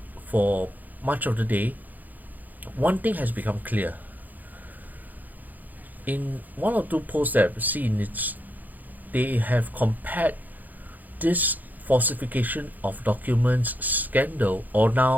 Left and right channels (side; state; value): left; late; 0.083 ms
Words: for much of the day, one thing has become clear. In one or two posts that I've seen, they have compared this falsification of documents scandal, or